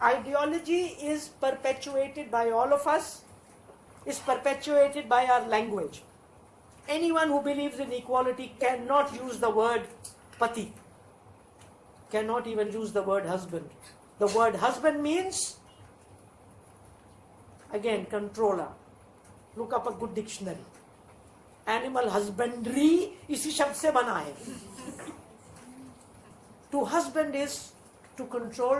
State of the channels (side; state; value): both; identical; correlation 1.00